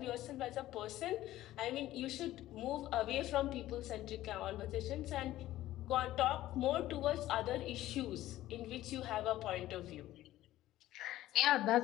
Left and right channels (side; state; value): right; quieter; 14.8 dB